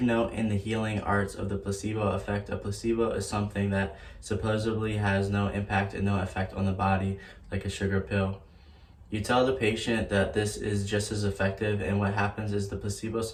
know in the healing arts of the placebo effect, a placebo is something that supposedly has no impact and no effect on the body, like a sugar pill. You tell the patient that this is just as effective, and what happens is the placebo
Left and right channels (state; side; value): identical; both; correlation 1.00